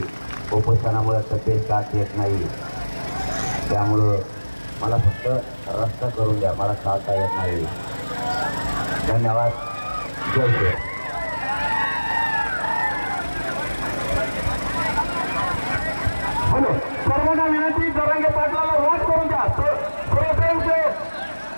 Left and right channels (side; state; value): both; inverted; correlation -1.00